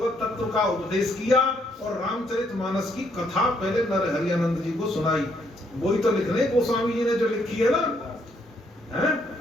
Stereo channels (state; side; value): normal; both; correlation 0.71